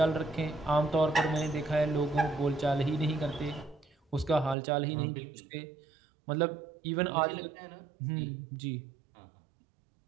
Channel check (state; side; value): drops out; left; at 4.5 s